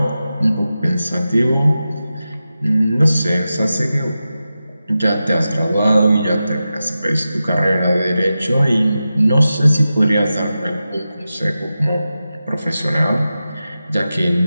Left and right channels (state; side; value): inverted; both; correlation -0.92